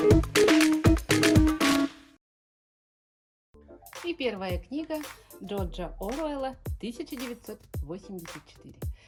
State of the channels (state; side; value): identical; both; correlation 1.00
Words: И первая книга Джорджа Оруэлла «1984».